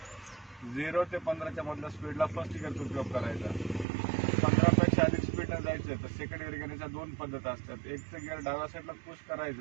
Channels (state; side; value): drops out; left; at 3.9 s